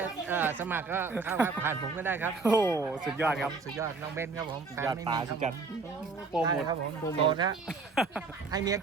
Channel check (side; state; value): left; quieter; 4.3 dB